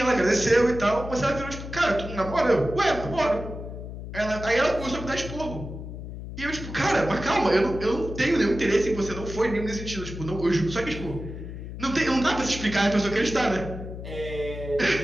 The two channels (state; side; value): noise; left; hum, 9 dB below the sound